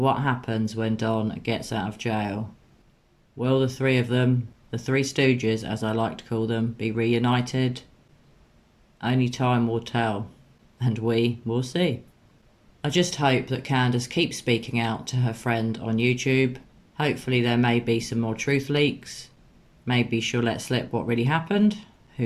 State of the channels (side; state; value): both; identical; correlation 1.00